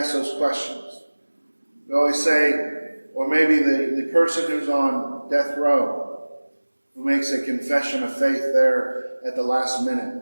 those questions. We always say, or maybe the person who's on death row, who makes a confession of faith there at the last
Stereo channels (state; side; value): inverted; both; correlation -1.00